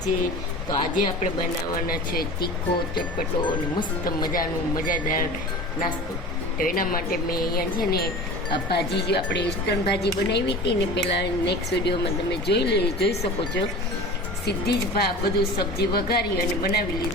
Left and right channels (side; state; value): both; normal; correlation 0.36